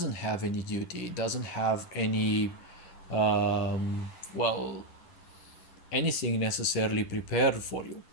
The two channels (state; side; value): late; right; 10 ms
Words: have any duty, it doesn't have any, well, anything necessarily prepared for you.